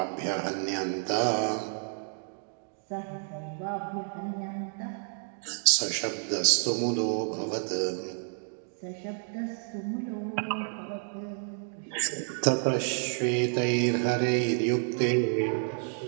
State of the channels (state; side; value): silent; left; 58 dB below the other